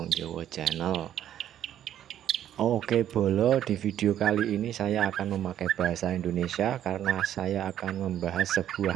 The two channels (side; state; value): left; quieter; 11.0 dB